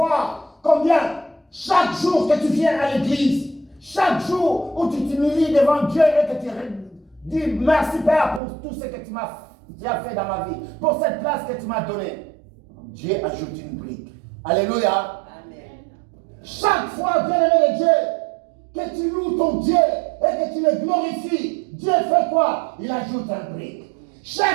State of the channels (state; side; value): drops out; left; at 8.4 s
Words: combien, chaque jour que tu viens à l'église, chaque jour où tu t'humilies devant Dieu et que tu dis merci Père pour tout ce que tu as fait dans ma vie, pour cette place que tu m'as donnée. Dieu ajoute une brique. Alléluia. Amen. Chaque fois, bien-aimé de Dieu, que tu loues ton Dieu et que tu le glorifies, Dieu fait quoi? Il ajoute un brique.